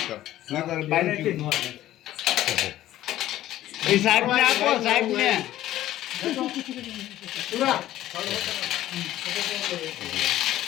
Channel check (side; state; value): right; quieter; 13.9 dB